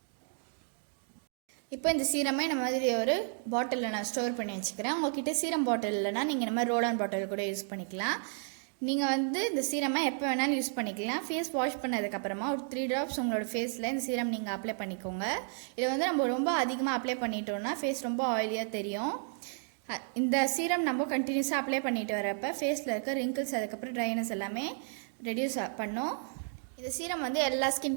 இப்போ இந்த சீரமே இந்த மாதிரி ஒரு பாட்டிலில் நான் ஸ்டோர் பண்ணி வச்சுக்கிறேன். உங்கள்கிட்ட சீரம் பாட்டில் இல்லைனா நீங்கள் இந்த மாதிரி ரோலான் பாட்டில் கூட யூஸ் பண்ணிக்கலாம். நீங்கள் வந்து இந்த சீரமை எப்போ வேணாலும் யூஸ் பண்ணிக்கலாம். ஃபேஸ் வாஷ் பண்ணதுக்கப்புறமா ஒரு 3 ட்ராப்ஸ் உங்களோட ஃபேஸில் இந்த சீரம் நீங்கள் அப்ளை பண்ணிக்கோங்க. இதை வந்து நம்ம ரொம்ப அதிகமாக அப்ளை பண்ணிட்டோம்னா ஃபேஸ் ரொம்ப ஆயிலியாக தெரியும். இந்த சீரம் நம்ம கண்டினியூஸாக அப்ளை பண்ணிட்டு வரப்போ ஃபேஸில் இருக்க ரிங்கிள்ஸ் அதுக்கப்புறம் ட்ரைனஸ் எல்லாமே ரெடியூஸ் பண்ணும். இந்த சீரம் வந்து எல்லா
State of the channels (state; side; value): silent; left; 56 dB below the other